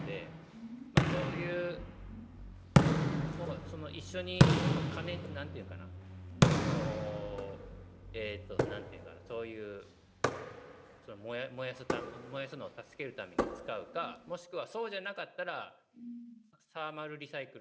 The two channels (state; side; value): identical; both; correlation 1.00